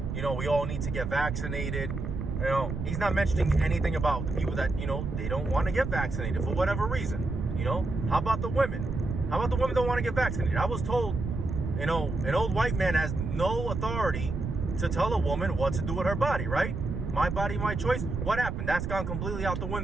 You know, we all need to get vaccinated. You know, he's not mentioning anything about the people that, you know, they don't want to get vaccinated for whatever reason. You know, how about the women? How about the women don't want to get vaccinated? I was told, you know, an old white man has no authority to tell a woman what to do with her body, right? My body, my choice. What happened? That's gone completely out the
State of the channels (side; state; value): right; noise; rumble, 4 dB below the sound